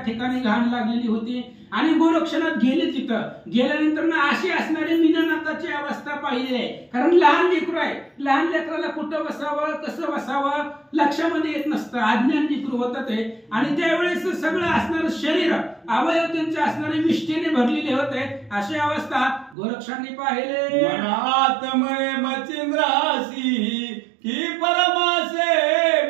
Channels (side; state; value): left; drops out; at 19.6 s